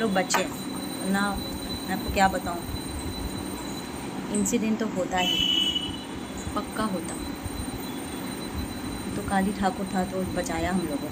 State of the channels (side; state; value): both; identical; correlation 1.00